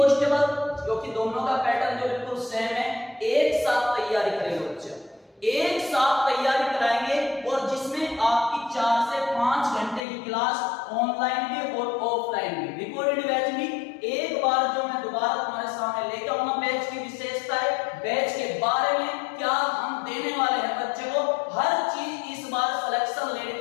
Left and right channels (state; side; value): drops out; right; at 10.0 s